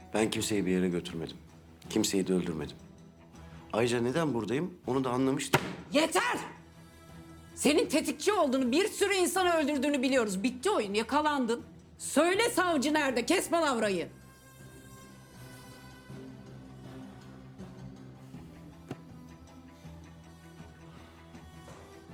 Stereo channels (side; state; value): both; identical; correlation 1.00